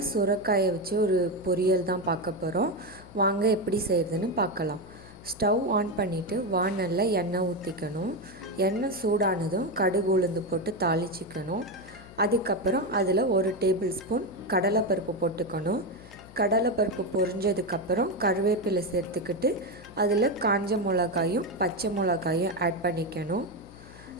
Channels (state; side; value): noise; left; hum, 20 dB below the sound